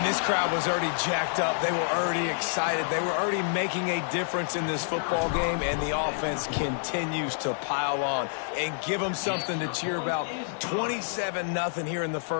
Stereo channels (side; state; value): right; silent; digital silence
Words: this crowd was already jacked up. They were already excited. They were already making a difference in this football game, and the offense continues to pile on and give them something to cheer about. 27-0 here in the